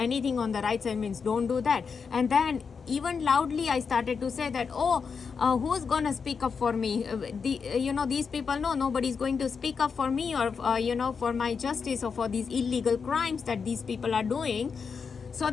on the right side means don't do that. And then even loudly I started to say that, who's gonna speak up for me? These people know nobody's going to speak up for me, or for my justice, or for these illegal crimes that these people are doing. So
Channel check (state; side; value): quieter; right; 5.7 dB